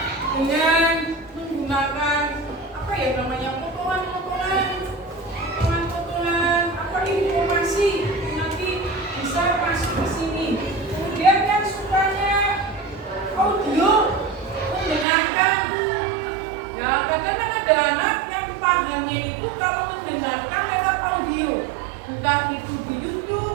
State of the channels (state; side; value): drops out; left; at 15.1 s